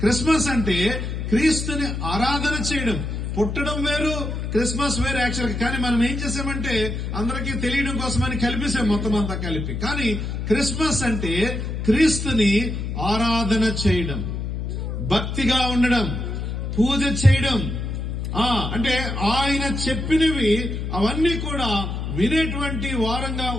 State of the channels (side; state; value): left; noise; hum, 4 dB below the sound